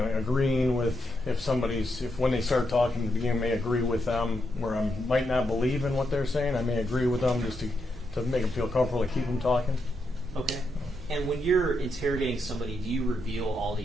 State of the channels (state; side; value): normal; both; correlation 0.82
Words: agreeing with if when they start talking at the beginning, I may agree with them where I might not believe in what they're saying. I may agree with them just to make them feel comfortable to keep them talking. Okay. And when you're interrogating somebody, do you reveal all